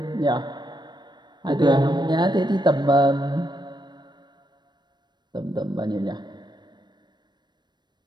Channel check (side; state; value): left; late; 0.21 ms